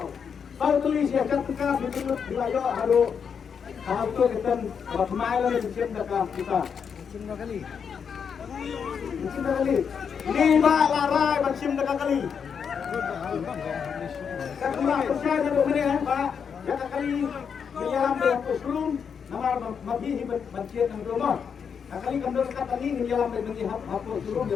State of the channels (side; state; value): right; quieter; 6.8 dB